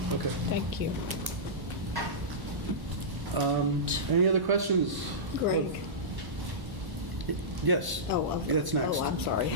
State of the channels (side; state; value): left; late; 1.1 ms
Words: Okay. Thank you. Any other questions? Greg. Yes. Oh, okay. That's next. Oh, I'm sorry.